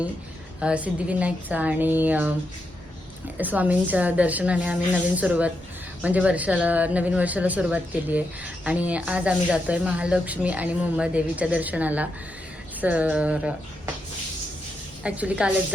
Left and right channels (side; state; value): both; normal; correlation 0.84